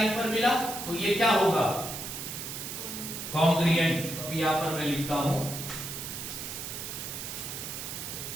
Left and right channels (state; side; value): noise; right; hiss, 7 dB below the sound